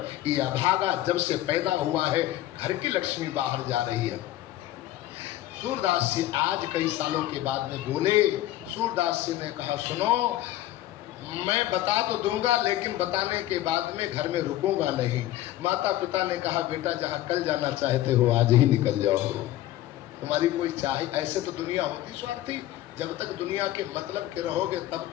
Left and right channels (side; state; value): right; quieter; 14.5 dB